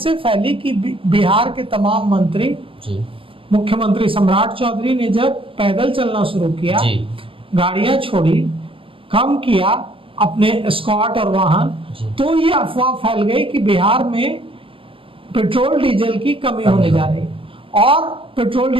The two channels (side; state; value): left; late; 0.26 ms